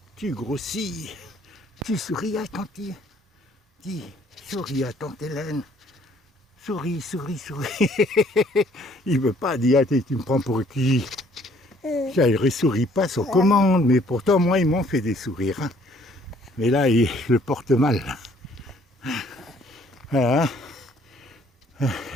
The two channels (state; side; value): normal; both; correlation 0.61